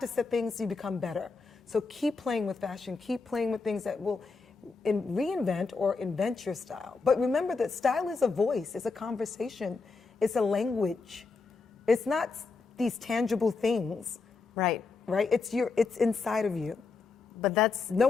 at things, you become better. So keep playing with fashion, keep playing with things that will reinvent or invent your style. But remember that style is a voice, it's a conversation, it's a language. It's not these tangible things, Right. right? It's inside of you. But that's No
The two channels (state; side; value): quieter; right; 4.4 dB